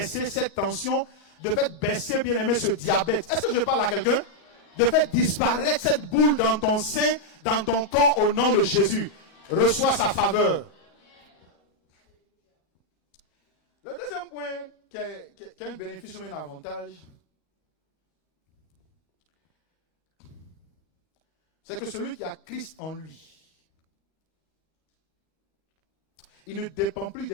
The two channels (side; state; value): right; late; 38 ms